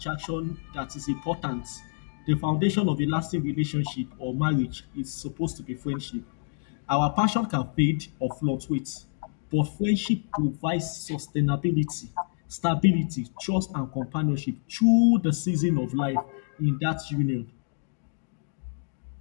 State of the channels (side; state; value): right; silent; digital silence